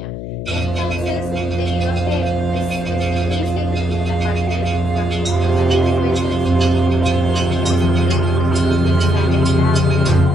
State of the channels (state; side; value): noise; left; hum, 8 dB below the sound